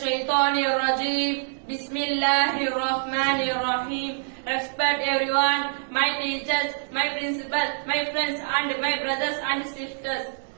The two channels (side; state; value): left; silent; digital silence